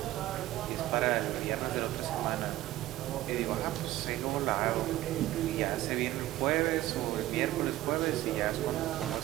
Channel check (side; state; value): left; quieter; 15.5 dB